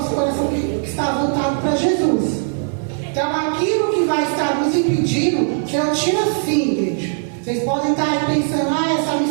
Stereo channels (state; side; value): silent; left; digital silence